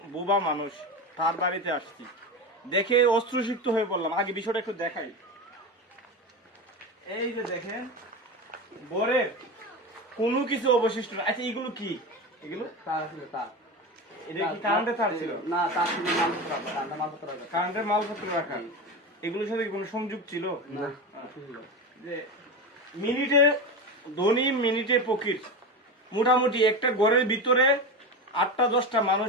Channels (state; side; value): normal; both; correlation 0.22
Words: বোবা মানুষ, তার বাড়িতে আসছি। দেখে অশ্রুসিক্ত হয়ে পড়লাম। আগে বিষয়টা একটু দেখাই। এই যে দেখেন, বরের কোনো কিছু অবশিষ্ট না। আচ্ছা, এগুলো কি? এগুলো তার ছিল তার। এটা কি কারেন্টের তার ছিল? না, তার ছিল মালপত্র রাখা, কারেন্টের মালপত্র রাখা। কারেন্টের মালপত্র রাখা। এগুলোর সাথে কোনো সংযোগ ছিল না। যে মিনিটে ধনী মিনিটে ফকির। মোটামুটি একটা ঘরের ভিতরে 8টা-10টা